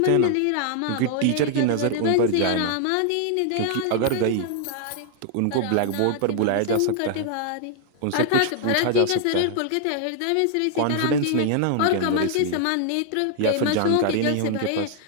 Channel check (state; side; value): different; both; correlation 0.00